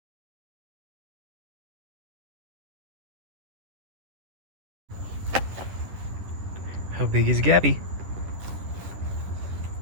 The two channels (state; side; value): late; left; 10 ms